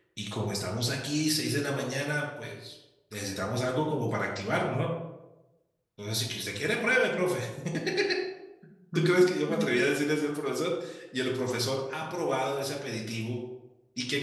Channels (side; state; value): both; identical; correlation 1.00